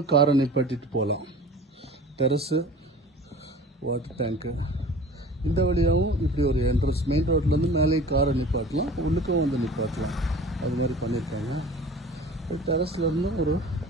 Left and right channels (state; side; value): normal; both; correlation 0.42